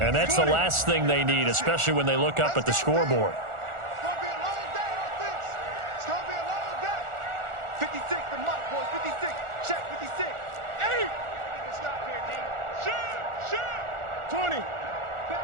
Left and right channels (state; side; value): late; left; 1.4 ms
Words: And that's the last thing they need, especially when they look up at the scoreboard. It's going to be a long day on this. It's going to be a long day. 56, the mark, boys. 56. Check, 56. 8. Stop here, D. Shoot. 20.